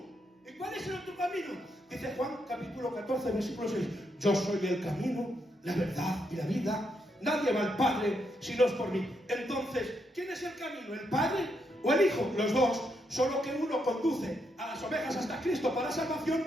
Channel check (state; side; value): normal; both; correlation 0.79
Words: ¿Y cuál es el otro camino? Dice Juan capítulo 14 versículo 6: yo soy el camino, la verdad y la vida. Nadie va al Padre si no es por mí. Entonces, ¿quién es el camino? ¿El Padre o el Hijo? Los dos. Solo que uno conduce a las ovejas hasta Cristo para salvación,